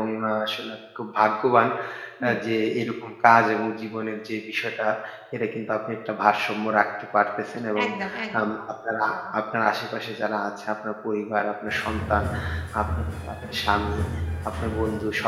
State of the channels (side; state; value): both; identical; correlation 1.00